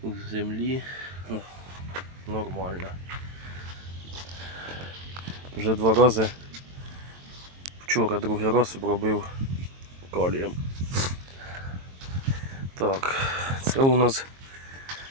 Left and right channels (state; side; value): late; left; 22 ms